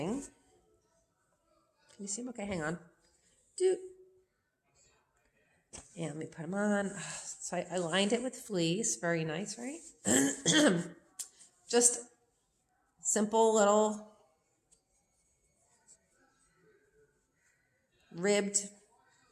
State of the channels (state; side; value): identical; both; correlation 1.00